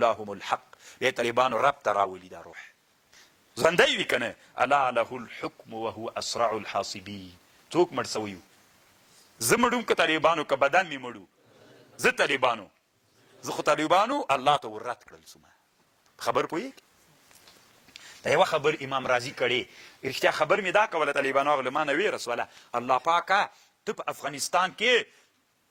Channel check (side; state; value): both; identical; correlation 1.00